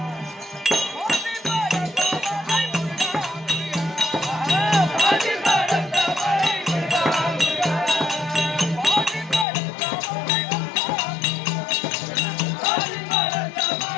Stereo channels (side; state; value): right; drops out; at 9.5 s